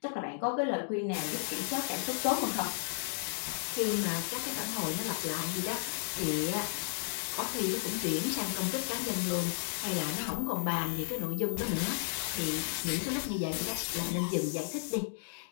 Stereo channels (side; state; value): right; silent; digital silence